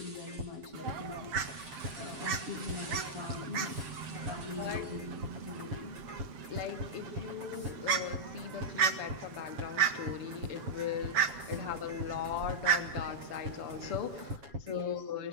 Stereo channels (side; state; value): left; late; 7.8 ms